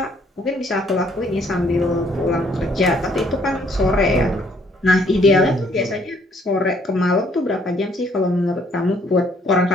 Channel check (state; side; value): normal; both; correlation 0.65